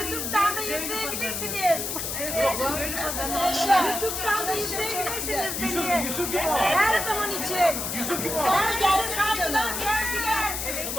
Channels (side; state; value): left; noise; hiss, 3 dB below the sound